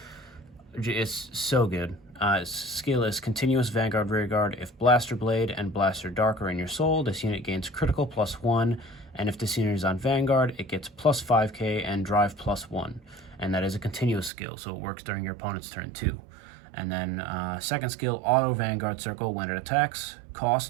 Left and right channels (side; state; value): left; drops out; at 14.3 s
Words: so good. Its skill is Continuous Vanguard Rearguard. If Blaster Blade and Blaster Dark are in your soul, this unit gains critical +1, and if this unit is on Vanguard, it gets +5k and Drive +1. And that is a continuous skill, so it works during your opponent's turn too. And then second skill, Auto Vanguard Circle. When it attacks,